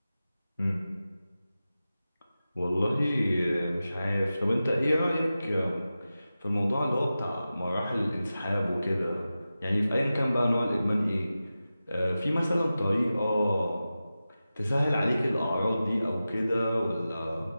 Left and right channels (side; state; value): both; inverted; correlation -0.94